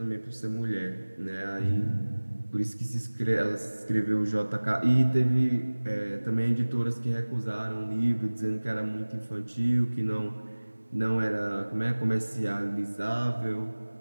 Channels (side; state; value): both; inverted; correlation -1.00